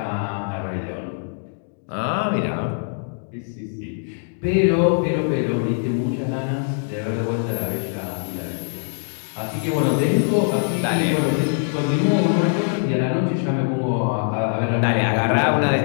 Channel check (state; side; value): silent; right; 64 dB below the other